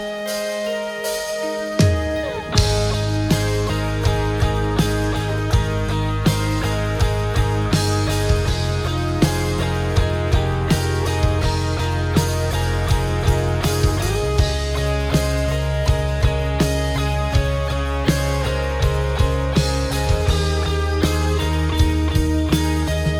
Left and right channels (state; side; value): identical; both; correlation 1.00